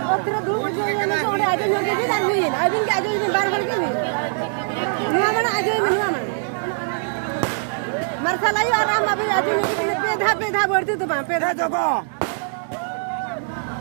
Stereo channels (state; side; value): silent; left; digital silence